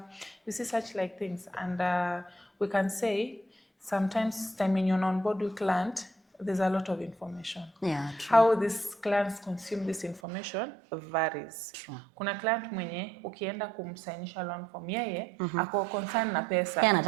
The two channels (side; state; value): left; drops out; at 10.2 s